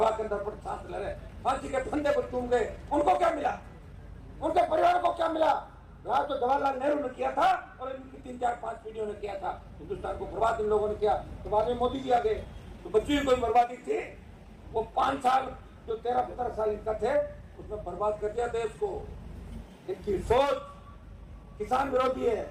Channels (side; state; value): both; identical; correlation 1.00